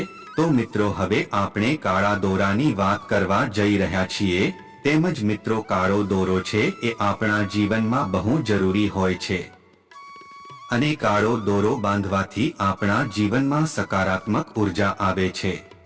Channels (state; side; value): identical; both; correlation 1.00